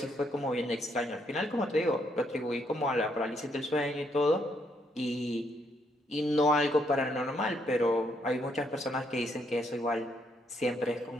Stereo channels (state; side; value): normal; both; correlation 0.74